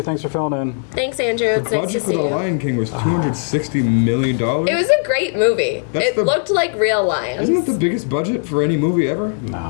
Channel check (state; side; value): silent; right; 67 dB below the other